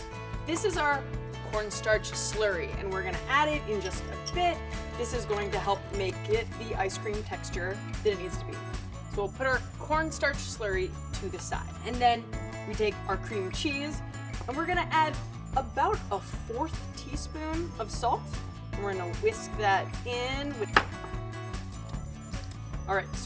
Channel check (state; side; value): identical; both; correlation 1.00